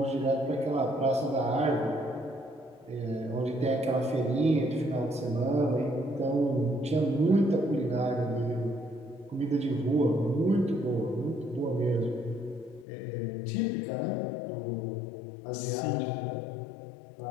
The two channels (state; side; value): drops out; right; at 12.9 s